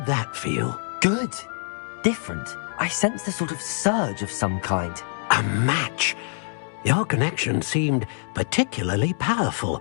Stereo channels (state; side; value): silent; right; 61 dB below the other